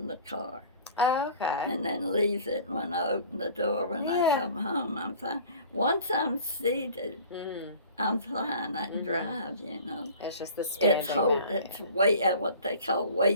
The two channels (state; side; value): inverted; both; correlation -0.45